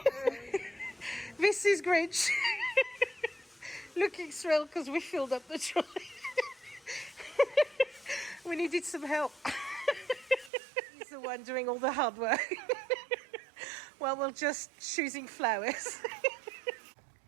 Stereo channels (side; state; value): left; drops out; at 10.5 s